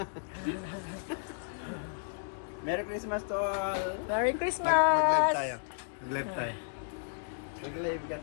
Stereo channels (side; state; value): right; silent; digital silence